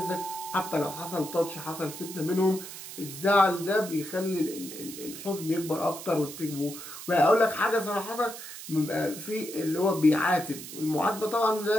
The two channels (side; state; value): right; noise; hiss, 11 dB below the sound